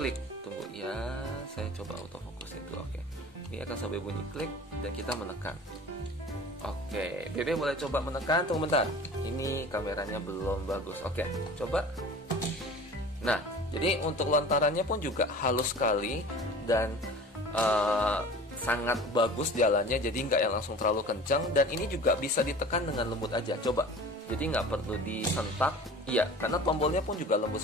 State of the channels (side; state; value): both; normal; correlation 0.41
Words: Tunggu ya, saya coba autofokusin dulu. Oke, ini akan sampai bunyi klik dan kita menekan. Oke, Bebe boleh coba menekan. Tunggu bentar, ini kameranya belum bagus. Oke, coba. Nah, jadi untuk lontarannya pun juga halus sekali dan sangat bagus jalannya. Jadi nggak yang langsung terlalu kencang, dan ini juga bisa ditekan dengan lembut aja. Coba, jadi nggak perlu disentak. Iya, karena tombolnya pun juga lembut